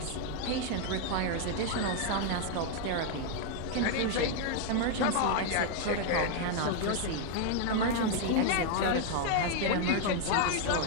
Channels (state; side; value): different; both; correlation 0.00